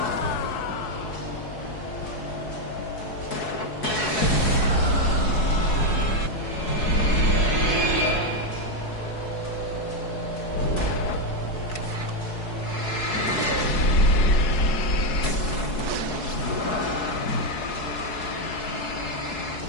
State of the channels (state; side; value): late; right; 4.7 ms